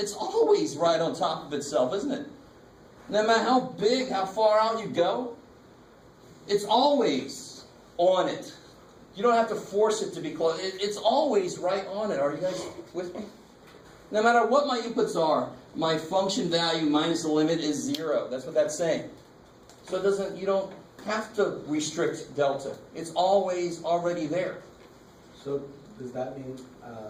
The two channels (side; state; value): both; identical; correlation 1.00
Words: it's always right on top of itself, isn't it? No matter how big, how far out you go, it's always on it. You don't have to force it to be close. It's always right on it. Are you guys with me? No matter what my inputs are, my function value minus the limit is 0. That's what that's saying. So you don't have to restrict delta. It's always already there. So does that mean,